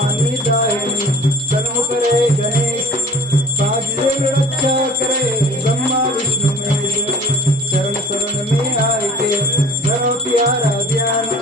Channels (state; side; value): normal; both; correlation 0.41